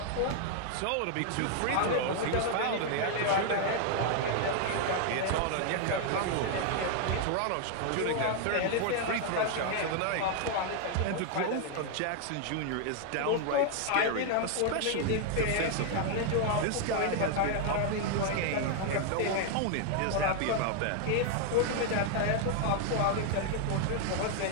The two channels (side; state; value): both; different; correlation 0.00